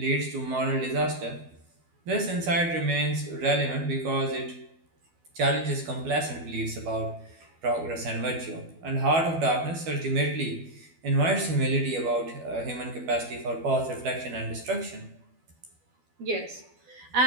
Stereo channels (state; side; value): late; left; 12 ms